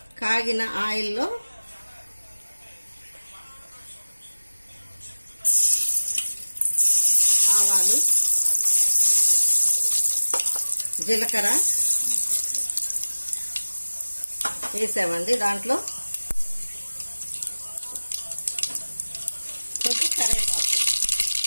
కాగిన ఆయిల్లో ఆవాలు, జీలకర్ర వేసామండి. దాంట్లో కొంచెం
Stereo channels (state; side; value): inverted; both; correlation -1.00